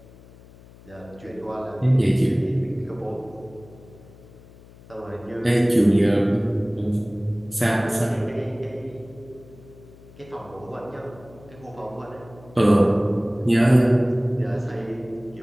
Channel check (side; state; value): left; noise; hum, 23 dB below the sound